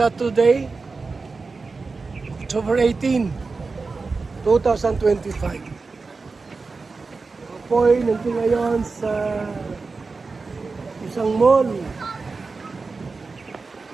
October 18, 2025. Ako po'y nandito ngayon sa isang mall.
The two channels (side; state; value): left; quieter; 4.2 dB